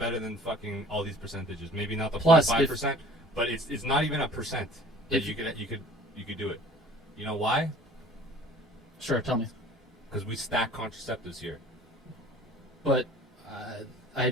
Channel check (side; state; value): both; normal; correlation 0.48